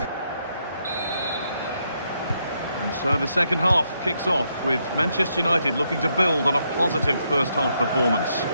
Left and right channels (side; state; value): both; inverted; correlation -0.78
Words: So the second half kicks off with Manchester United looking to build on a positive first half performance.